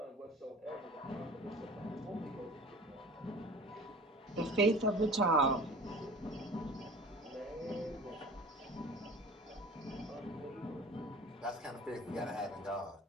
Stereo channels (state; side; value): normal; both; correlation 0.41